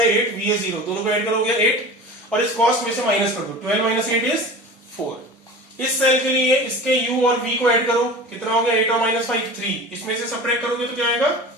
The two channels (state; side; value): normal; both; correlation 0.36